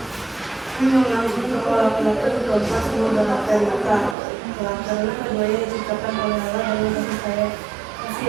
Menganggap bahwa laki-laki dan perempuan semua berada di mata Allah karena keduanya diciptakan oleh Allah dan memiliki kasih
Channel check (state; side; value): drops out; left; at 4.2 s